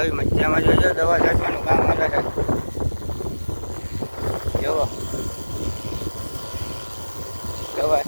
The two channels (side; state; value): both; inverted; correlation -1.00